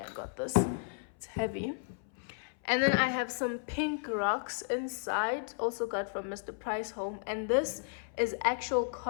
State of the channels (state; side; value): silent; right; 55 dB below the other